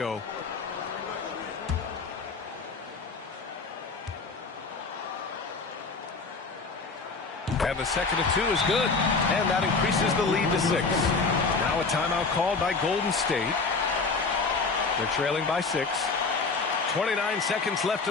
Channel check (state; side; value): quieter; right; 4.3 dB